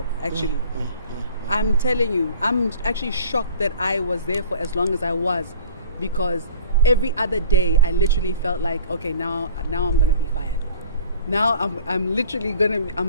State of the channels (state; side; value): inverted; both; correlation -0.45